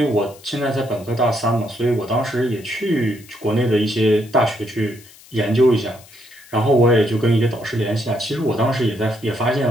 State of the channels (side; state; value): left; noise; hiss, 23 dB below the sound